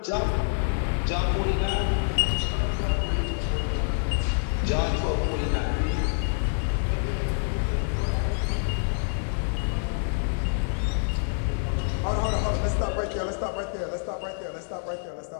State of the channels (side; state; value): right; silent; 60 dB below the other